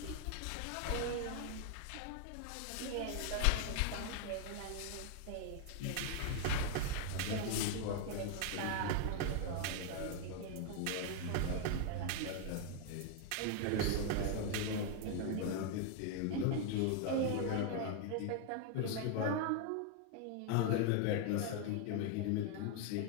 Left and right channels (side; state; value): both; different; correlation 0.00